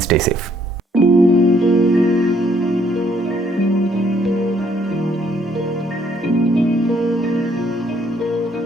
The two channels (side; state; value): both; normal; correlation 0.66